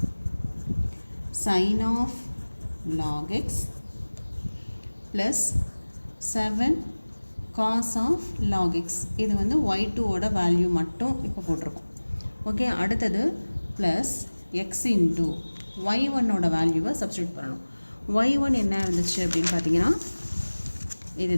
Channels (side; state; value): both; inverted; correlation -1.00